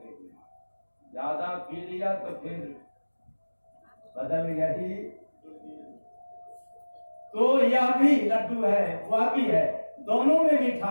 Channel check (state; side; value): inverted; both; correlation -1.00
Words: पीना। ज्यादा पी लिया तो फिर बदल गया ही। तो यह भी लड्डू है, वह भी है, दोनों में